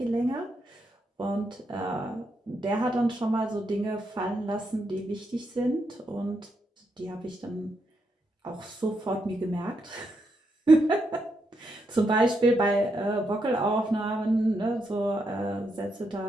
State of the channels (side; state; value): both; normal; correlation 0.81